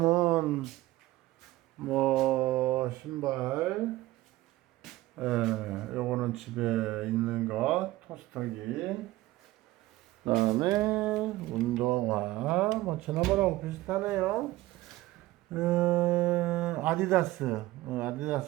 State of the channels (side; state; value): left; quieter; 17.6 dB